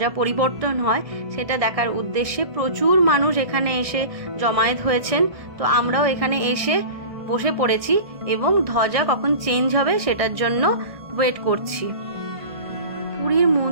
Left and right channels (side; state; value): left; late; 1.6 ms